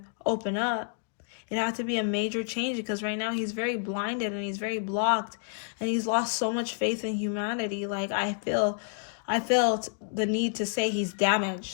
open up. It had to be a major change because right now he's very blinded and he's very blocked and he's lost so much faith in humanity. Like I felt the need to say he's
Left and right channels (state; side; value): silent; right; digital silence